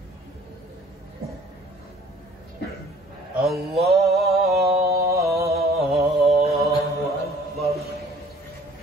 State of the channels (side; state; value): both; normal; correlation 0.52